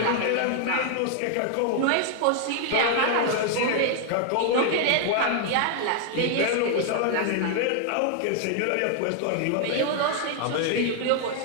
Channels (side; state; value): both; different; correlation 0.00